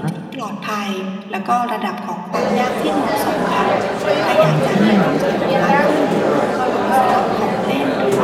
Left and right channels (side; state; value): both; identical; correlation 1.00